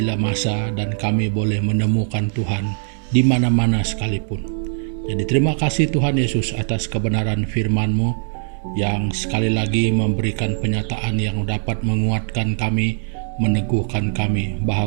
masa, dan kami boleh menemukan Tuhan di mana-mana sekalipun. Jadi terima kasih Tuhan Yesus atas kebenaran firman-Mu yang sekali lagi memberikan penyataan yang dapat menguatkan kami, meneguhkan kami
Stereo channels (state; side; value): silent; left; digital silence